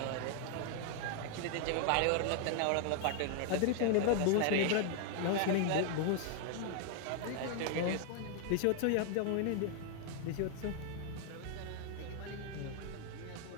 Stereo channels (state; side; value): different; both; correlation 0.00